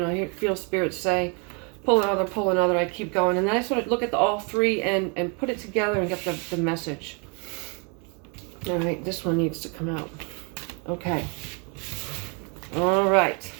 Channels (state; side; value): quieter; left; 34.7 dB